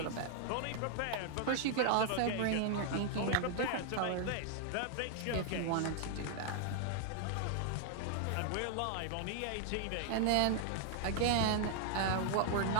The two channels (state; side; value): different; both; correlation 0.00